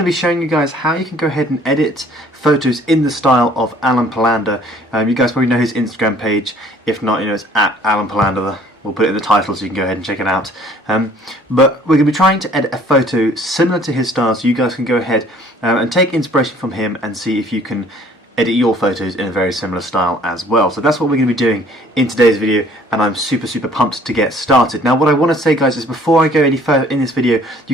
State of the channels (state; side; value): normal; both; correlation 0.56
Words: be showing you guys how you can go ahead and edit photos in the style of Alen Palander. You guys probably know his Instagram page. If not, you know, it's at Alen Palander. We'll put it in the title so you can go ahead and check it out. But we're going to be trying to edit a photo similar to his style, so you guys can go ahead and take inspiration from him and see if you can edit your photos in a very similar style as well. So that's what we're going to be doing in today's video, and I'm super pumped to get started. Now what I want to say, guys, is before I go any further in this video,